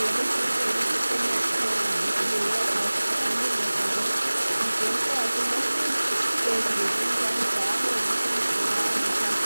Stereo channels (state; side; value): inverted; both; correlation -1.00